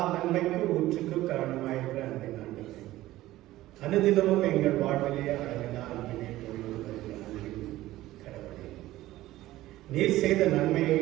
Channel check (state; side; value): quieter; left; 16.1 dB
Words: நன்மைக்கும் ஊற்றுக்கு காரணமாயிருக்கிற அன்பை ஆண்டவரே, அனுதினமும் எங்கள் வாழ்விலே அழகினால் கடவுளே, நீர் செய்த நன்மையை